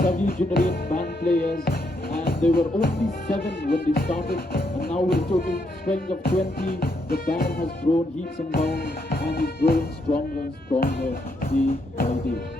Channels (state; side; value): normal; both; correlation 0.77